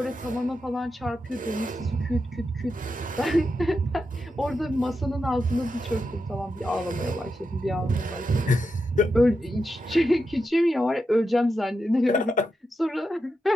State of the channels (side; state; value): both; normal; correlation 0.87